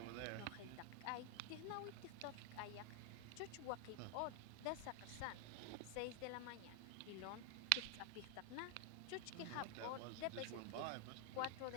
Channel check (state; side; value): different; both; correlation 0.00